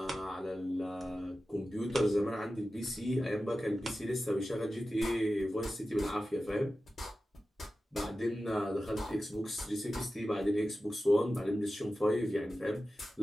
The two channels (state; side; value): normal; both; correlation 0.94